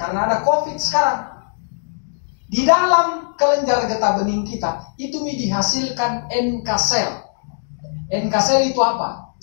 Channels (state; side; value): silent; right; digital silence